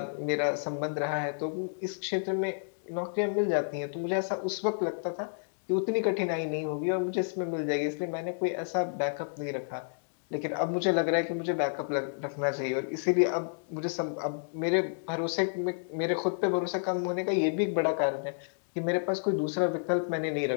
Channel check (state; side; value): silent; right; digital silence